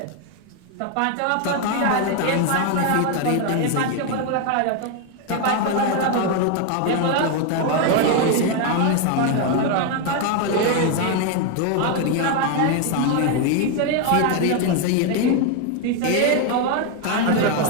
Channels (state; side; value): different; both; correlation 0.01